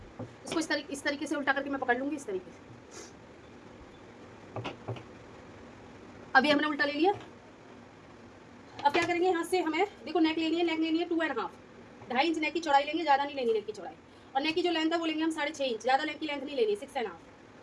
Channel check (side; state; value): both; identical; correlation 1.00